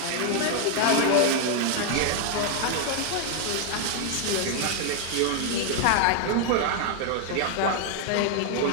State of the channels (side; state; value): both; different; correlation 0.00